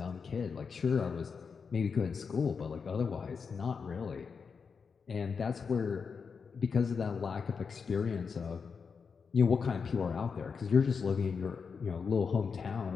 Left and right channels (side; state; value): right; quieter; 5.7 dB